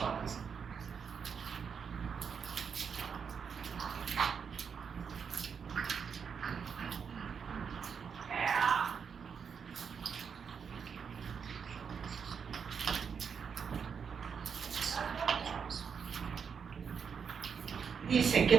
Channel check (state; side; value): quieter; left; 6.6 dB